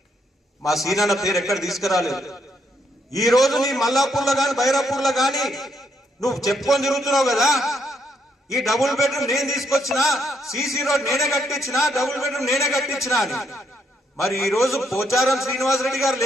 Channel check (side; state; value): both; normal; correlation 0.75